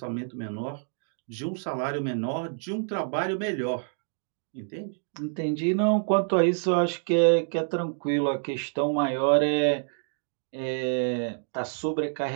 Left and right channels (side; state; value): left; silent; digital silence